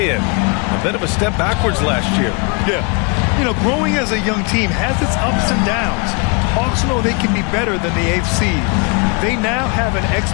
A bit of a step backwards last year. Yeah. You know, growing as a young team has its ups and downs. Hawks know they can be better than the 8th seed. They now have an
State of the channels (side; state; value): right; quieter; 33.0 dB